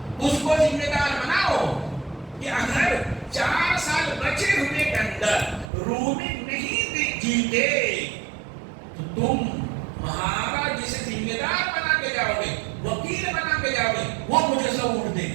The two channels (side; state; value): left; drops out; at 5.7 s